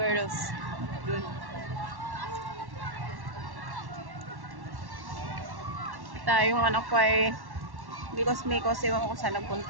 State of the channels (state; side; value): late; left; 1.1 ms